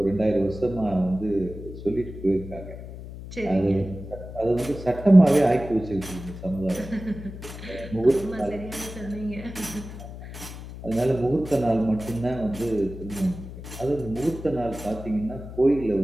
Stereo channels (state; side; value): noise; left; hum, 12 dB below the sound